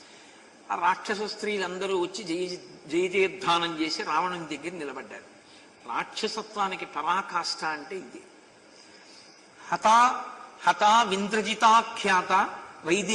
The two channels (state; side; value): identical; both; correlation 1.00